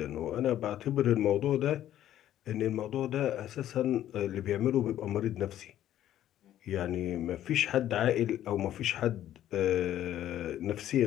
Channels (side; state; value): right; quieter; 12.1 dB